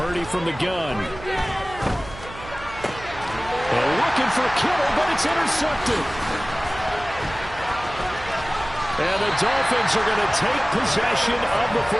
from the gun. They're looking for Kittle, but it's intercepted. And the Dolphins are going to take possession of the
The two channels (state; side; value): noise; right; hum, 15 dB below the sound